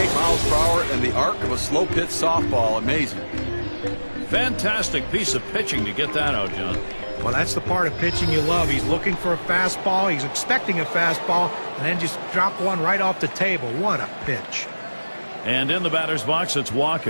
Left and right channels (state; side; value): inverted; both; correlation -1.00